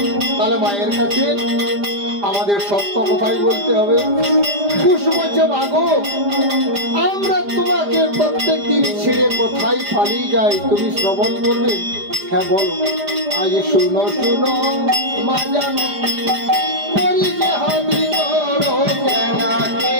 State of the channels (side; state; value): left; late; 5.0 ms